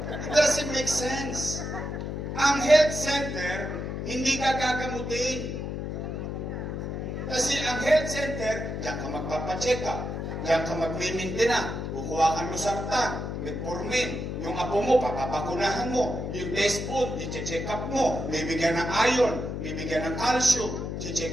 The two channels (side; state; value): left; noise; hum, 4 dB below the sound